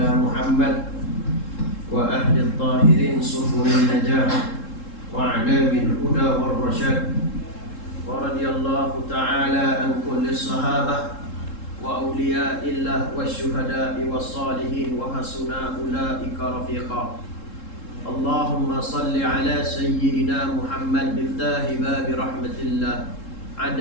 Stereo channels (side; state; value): right; late; 3.7 ms